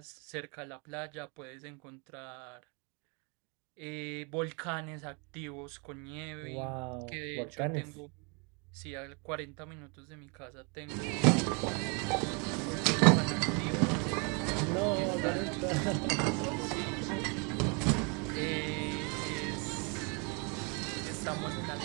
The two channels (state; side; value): quieter; left; 33.3 dB